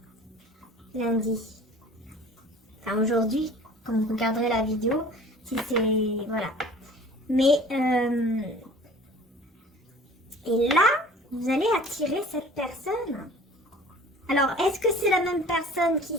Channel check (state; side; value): normal; both; correlation 0.46